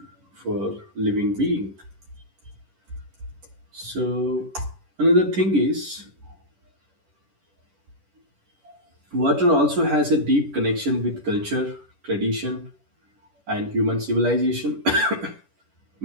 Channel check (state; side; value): late; left; 10 ms